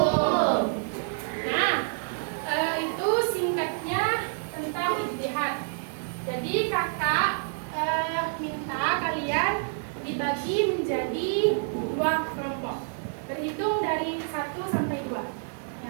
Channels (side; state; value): left; silent; digital silence